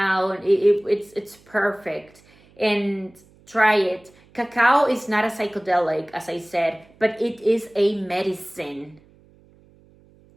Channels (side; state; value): right; noise; hum, 29 dB below the sound